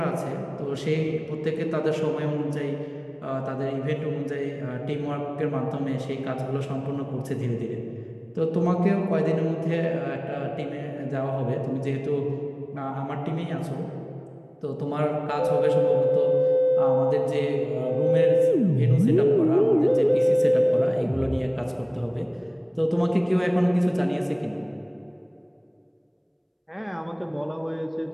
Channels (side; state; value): both; identical; correlation 1.00